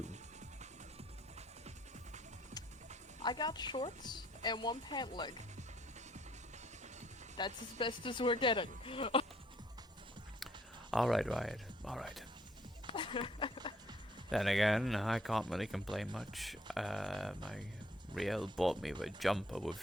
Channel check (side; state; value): both; normal; correlation 0.65